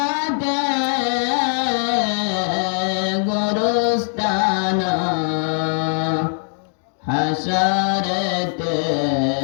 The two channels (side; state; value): right; silent; 60 dB below the other